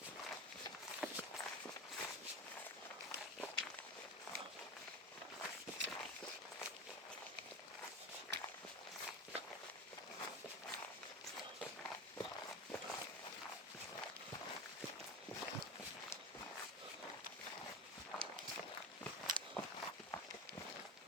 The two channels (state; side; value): normal; both; correlation 0.24